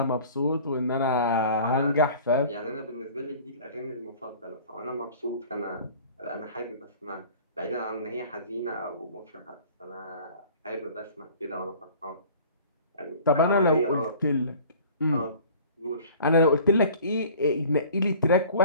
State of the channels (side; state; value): both; inverted; correlation -0.46